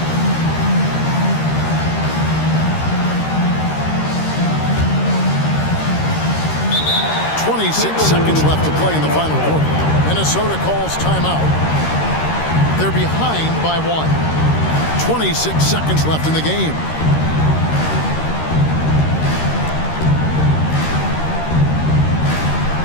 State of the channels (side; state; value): right; late; 13 ms